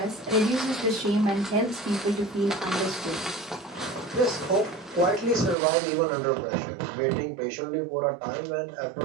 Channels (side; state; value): left; drops out; at 5.6 s